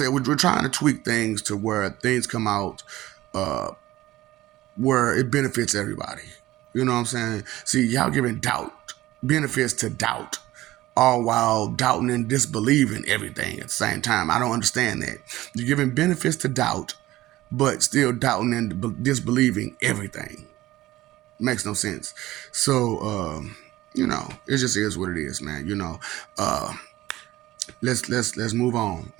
we're trying to tweak things to where things come out where it benefits everybody. You know what I'm saying? See, y'all giving benefits to doubt, all while doubting and disbelieving everything at the same time. I don't understand that. You're giving benefits to doubt, but still doubting and disbelieving everything. Makes no sense. So, it just is what it is, man. Let's move on,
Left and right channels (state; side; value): quieter; left; 16.6 dB